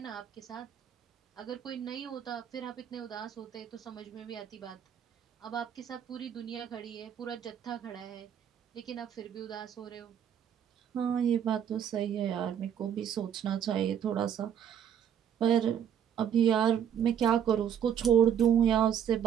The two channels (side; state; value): left; quieter; 9.0 dB